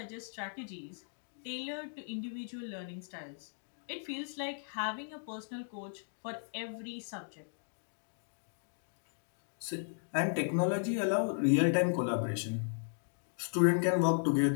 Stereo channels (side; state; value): right; silent; digital silence